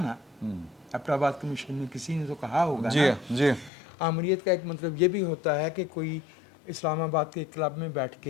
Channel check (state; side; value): drops out; right; at 3.7 s